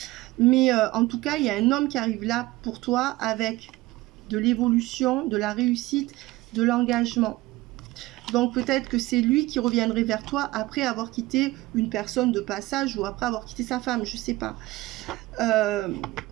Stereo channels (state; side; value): quieter; left; 19.1 dB